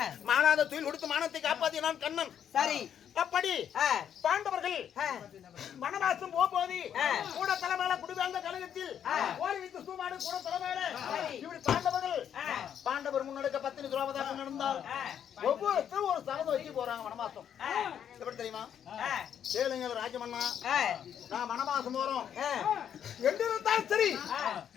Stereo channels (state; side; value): quieter; right; 9.0 dB